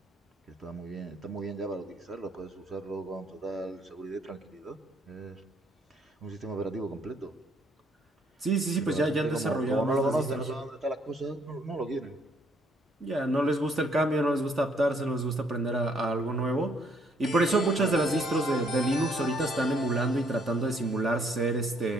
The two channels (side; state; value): both; normal; correlation 0.67